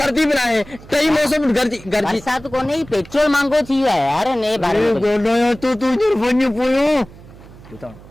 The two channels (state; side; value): noise; right; hum, 20 dB below the sound